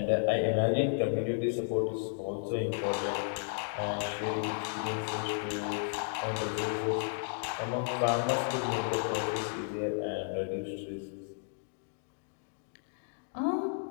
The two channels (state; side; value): silent; right; digital silence